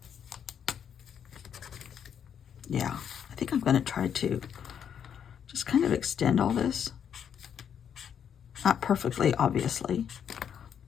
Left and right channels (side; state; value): right; quieter; 8.3 dB